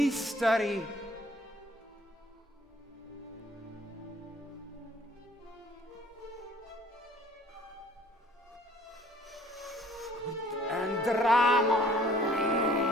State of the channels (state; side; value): normal; both; correlation 0.57